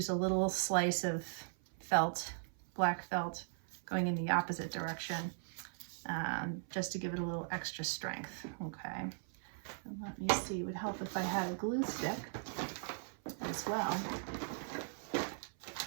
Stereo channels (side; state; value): left; silent; 52 dB below the other